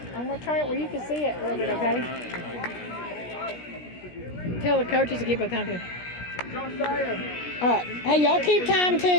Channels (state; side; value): late; right; 17 ms